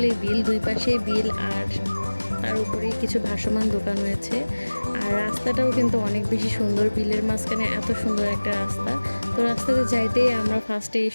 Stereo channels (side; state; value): both; inverted; correlation -1.00